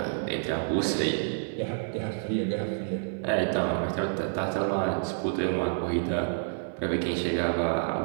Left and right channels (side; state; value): left; silent; 59 dB below the other